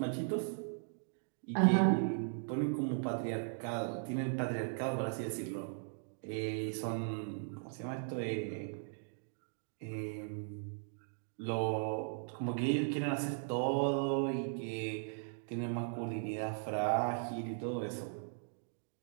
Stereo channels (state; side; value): silent; left; digital silence